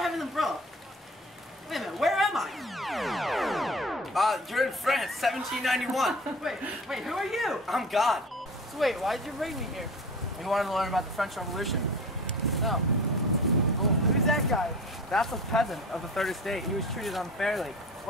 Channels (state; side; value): normal; both; correlation 0.38